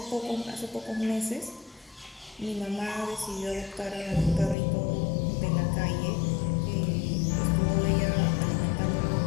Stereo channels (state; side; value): drops out; right; at 4.5 s